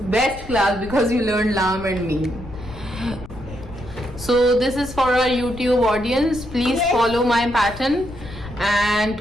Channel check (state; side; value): noise; left; rumble, 14 dB below the sound